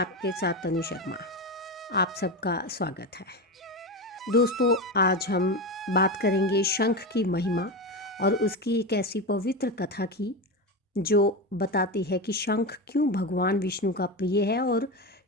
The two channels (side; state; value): both; normal; correlation 0.19